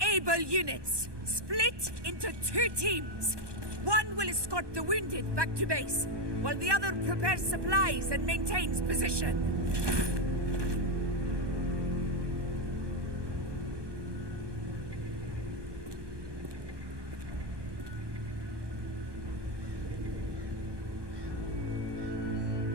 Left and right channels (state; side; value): late; left; 1.2 ms